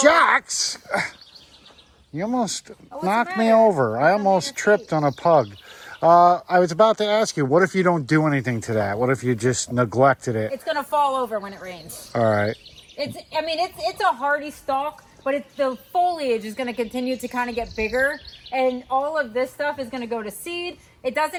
you almost knocked me over. I almost tripped on a pug. I was about to ask you, what if you don't do anything to that? What if you just neglected it? It's going to fall over when it rains. All right. It's a hardy stalk, but the foliage is going to continue to kind of get bigger, and all of this stuff is going to go to seed. It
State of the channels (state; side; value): identical; both; correlation 1.00